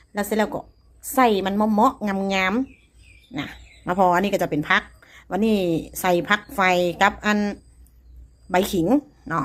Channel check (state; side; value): identical; both; correlation 1.00